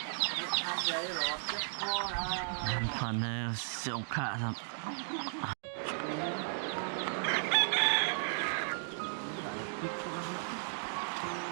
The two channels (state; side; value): silent; left; digital silence